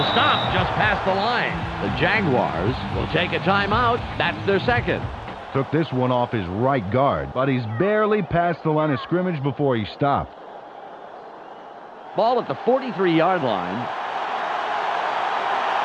stop just past the line. The Jaguars will take a timeout. That's their second. Took this one off his right guard, but he's barely past the line of scrimmage before he stopped. Ball at the 43-yard line.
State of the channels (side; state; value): both; identical; correlation 1.00